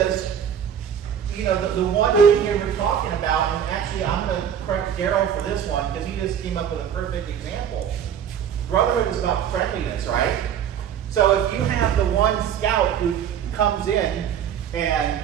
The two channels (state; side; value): quieter; left; 8.8 dB